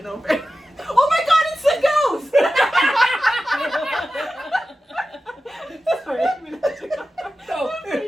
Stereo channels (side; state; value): both; normal; correlation 0.94